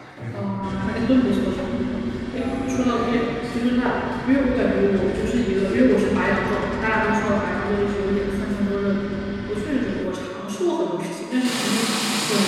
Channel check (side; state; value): both; identical; correlation 1.00